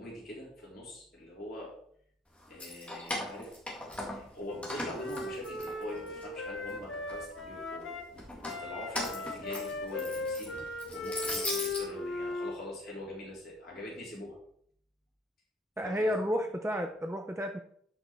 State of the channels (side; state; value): both; normal; correlation 0.57